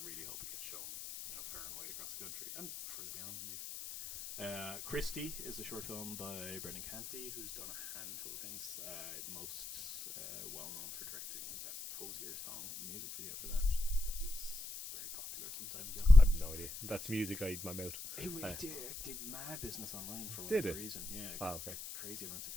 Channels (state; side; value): noise; left; hiss, 10 dB below the sound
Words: really hope it gets shown, you know, far and wide across the country and further beyond, indeed. Christie is a short film by Brendan Canty, who's done a handful of things. Most well known for directing that Hosier song music video for that. That was very popular some time ago. I have no idea. That's music I eat in my mouth. It did mad business online for Did whatever it? reason. Yeah. Oh, okay. Crazy amounts of